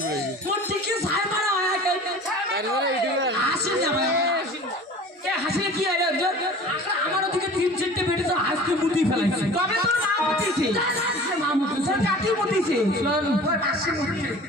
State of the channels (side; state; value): both; normal; correlation 0.42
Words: মোর টিকে ছাই মারা হয় হাসি যাবে হাসি কি হয় আমার ওদিকে 3-4টে বেটে তো হাসতে মুতি ফেলাইছে কবে তোর মা মুতিছে মা মুতিছে কাটি মুতিছে